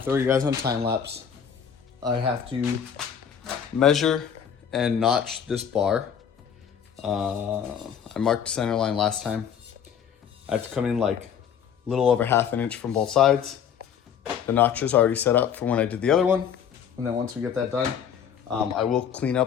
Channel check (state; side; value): quieter; right; 8.0 dB